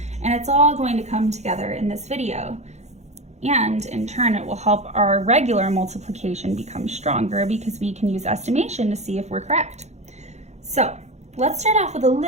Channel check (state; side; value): late; left; 0.33 ms